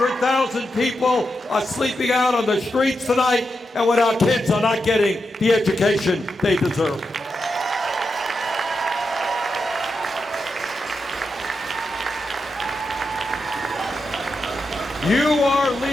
people are sleeping out on the streets tonight and when our kids are not getting the education they deserve. You are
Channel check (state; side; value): normal; both; correlation 0.86